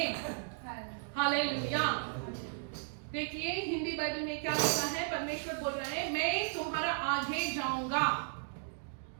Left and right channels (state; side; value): silent; left; digital silence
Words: Hallelujah. देखिए Hindi Bible में क्या लिखा है, परमेश्वर बोल रहे हैं मैं तुम्हारा आगे जाऊंगा.